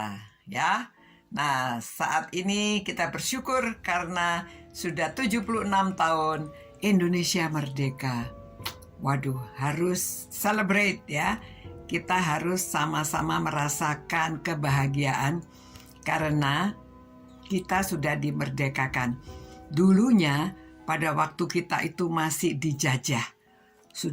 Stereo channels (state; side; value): identical; both; correlation 1.00